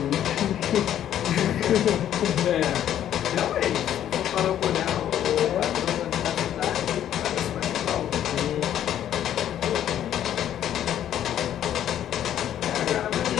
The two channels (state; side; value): quieter; right; 10.9 dB